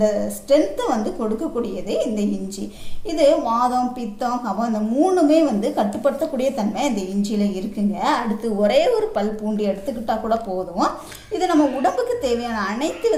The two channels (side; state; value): both; identical; correlation 1.00